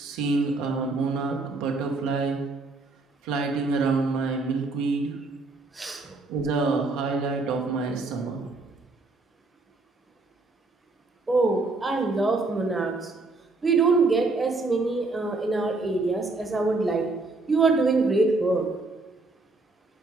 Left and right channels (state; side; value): quieter; left; 3.4 dB